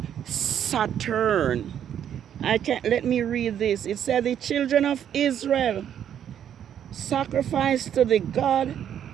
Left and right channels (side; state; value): left; quieter; 9.5 dB